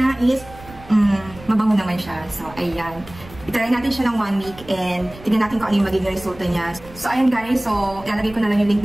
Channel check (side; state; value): right; noise; rumble, 19 dB below the sound